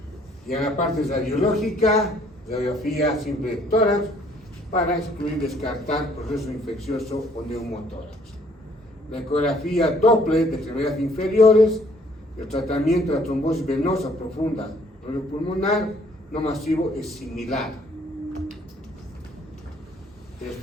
Y en la parte radiológica, radiografía simple de tórax, para excluir, descartar proceso infeccioso o neumotórax. La ecografía Doppler de extremidades inferiores, el tratamiento de la trombosis venosa profunda pulmonar no masivo es similar. El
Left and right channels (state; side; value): normal; both; correlation 0.62